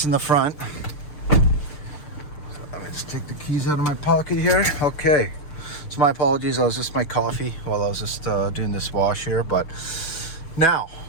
in the front. So let me just take the keys out of my pocket here. Okay, so my apologies, I was just my coffee while I was just doing this wash here. But now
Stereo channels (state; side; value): late; right; 6.7 ms